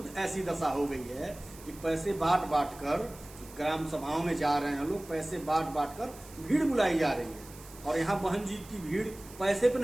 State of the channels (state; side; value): noise; right; hiss, 19 dB below the sound